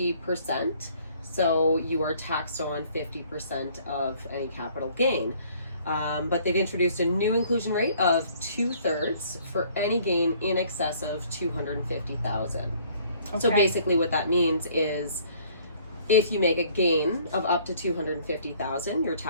So you are taxed on 50% of any capital gain. But they've introduced a new inclusion rate of 2/3 for any gain in excess of $250,000. Okay. So basically what that means is if you make a gain of up to $250,000, you're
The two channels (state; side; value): inverted; both; correlation -0.58